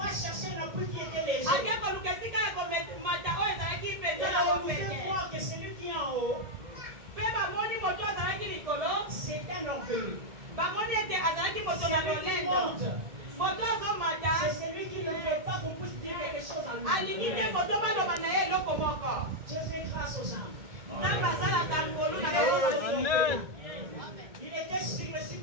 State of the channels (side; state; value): left; late; 1.7 ms